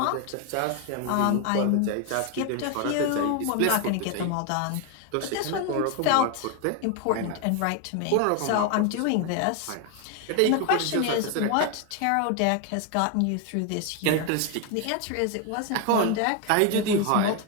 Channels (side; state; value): both; different; correlation 0.01